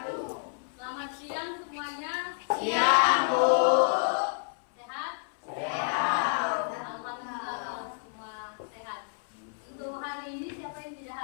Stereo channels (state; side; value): silent; right; 57 dB below the other